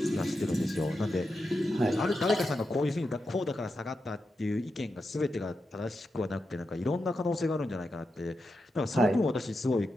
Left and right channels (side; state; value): both; normal; correlation 0.88